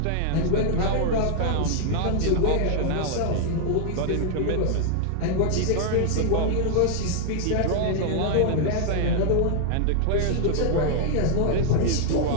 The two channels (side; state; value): both; different; correlation 0.00